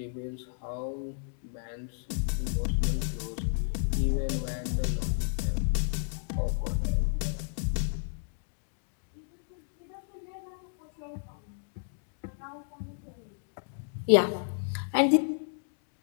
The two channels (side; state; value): right; silent; digital silence